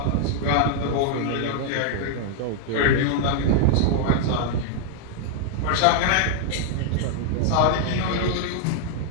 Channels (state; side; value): different; both; correlation 0.00